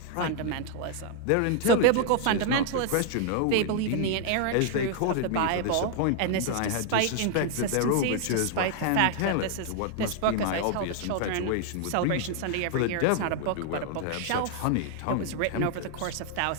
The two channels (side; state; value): both; different; correlation 0.00